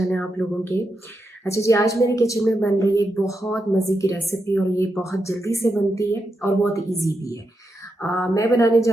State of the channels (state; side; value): normal; both; correlation 0.85